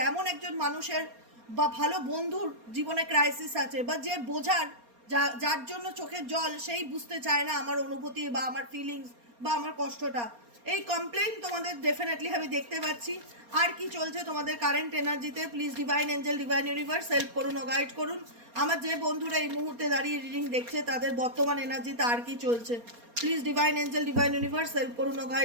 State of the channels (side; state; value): left; late; 4.3 ms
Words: এমন একজন মানুষের বা ভালো বন্ধুর জীবনে ক্রাইসিস আছে, বা যে বোঝার, যার জন্য চোখের জল, সেই বুঝতে চায় না আমার অনুভূতি বা আমার ফিলিংস বা আমার কষ্টটা। এই কমপ্লেন তোমাদের ডেফিনেটলি আমি দেখতে পাচ্ছি। আর কি চলছে তোমাদের কারেন্ট এনার্জিতে? Please divine angel, divine universe help করুন ও গাইড করুন। আমার যে বন্ধুরা এই মুহূর্তে দাঁড়িয়ে রিডিং দেখছে তাদের বর্তমান এনার্জিতে আর কি চলছে? Please divine angel, divine universe help করুন ও